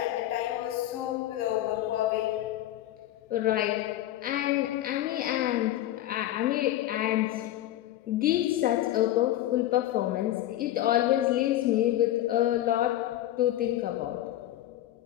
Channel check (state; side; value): quieter; right; 13.8 dB